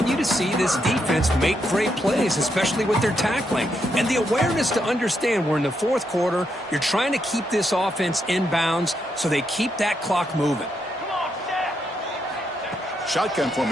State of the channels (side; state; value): both; normal; correlation 0.80